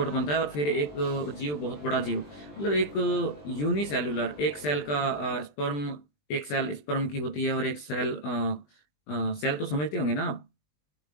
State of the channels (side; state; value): right; late; 20 ms